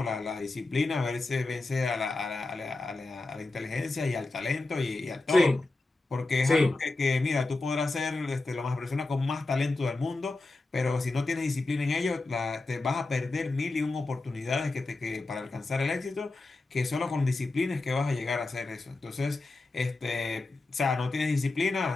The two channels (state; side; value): quieter; right; 3.2 dB